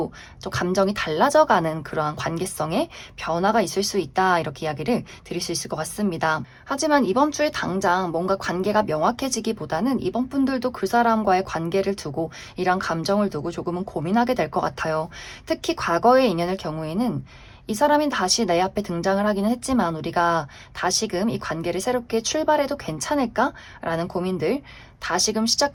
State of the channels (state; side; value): identical; both; correlation 1.00